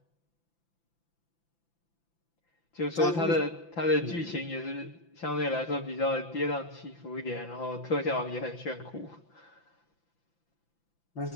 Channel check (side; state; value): right; late; 5.9 ms